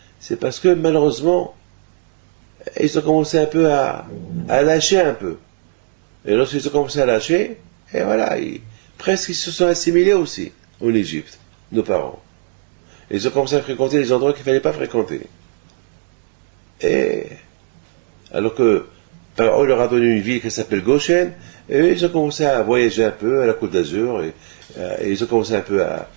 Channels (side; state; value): left; silent; digital silence